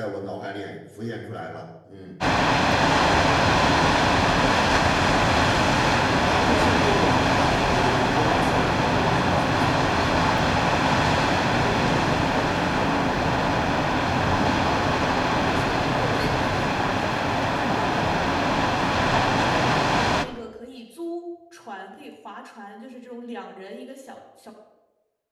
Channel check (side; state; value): both; identical; correlation 1.00